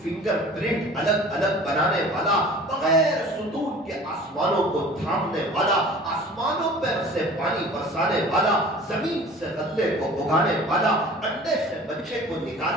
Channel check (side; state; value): both; normal; correlation 0.44